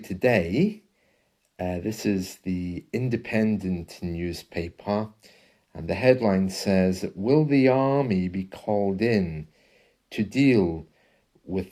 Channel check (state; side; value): identical; both; correlation 1.00